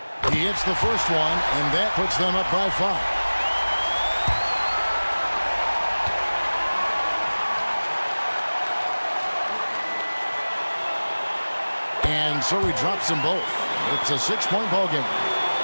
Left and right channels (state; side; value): inverted; both; correlation -1.00